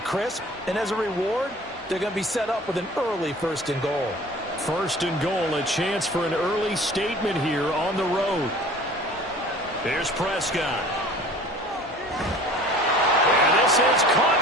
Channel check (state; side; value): normal; both; correlation 0.46